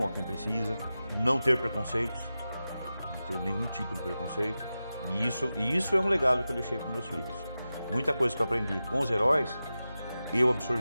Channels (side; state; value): both; inverted; correlation -0.93